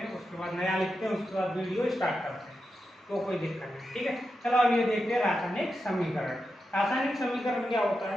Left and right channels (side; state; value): both; normal; correlation 0.88